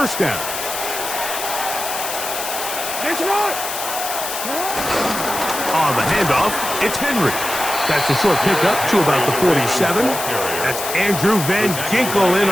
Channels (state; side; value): noise; left; hiss, 5 dB below the sound